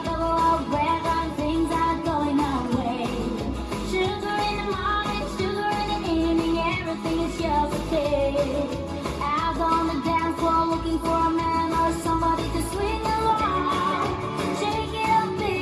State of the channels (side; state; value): both; identical; correlation 1.00